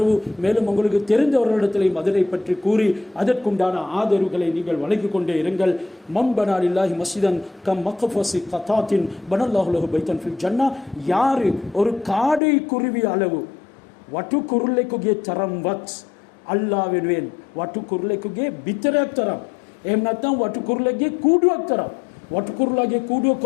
மேலும் உங்களுக்கு தெரிந்தவர்களிடத்திலையும் அதனை பற்றி கூறி அதற்குண்டான ஆதரவுகளை நீங்கள் வழங்கிக் கொண்டே இருங்கள். மம்பனா லில்லாஹி மஸ்ஜிதன் கம் மக்ஃபஸி கதாத்தின் பனல்லாஹு லஹு பைத்தன் ஃபில் ஜன்னா. யாரு ஒரு காடை குருவி அளவு වටුකුරුල්ලෙකුගේ තරම්වත් අල්ලා වෙනුවෙන් වටුකුරුල්ලෙකුගේ බිතරයක් තරම්, එහෙම නැත්නම් වටුකුරුල්ලෙකුගේ කූඩුවක් තරම්, වටුකුරුල්ලාගේ කූඩුව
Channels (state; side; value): drops out; right; at 12.4 s